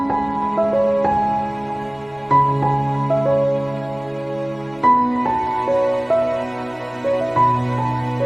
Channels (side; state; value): left; noise; rumble, 29 dB below the sound